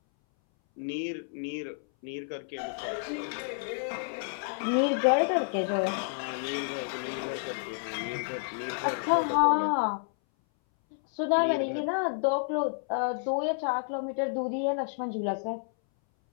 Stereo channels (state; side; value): silent; right; 58 dB below the other